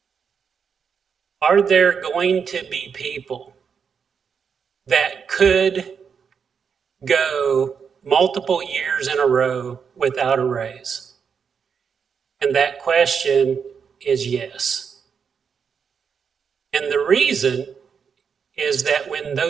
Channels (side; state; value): left; quieter; 6.5 dB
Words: are there going to be people that could go multiple years in a row without a raise? And that question is yes. And the reason is that when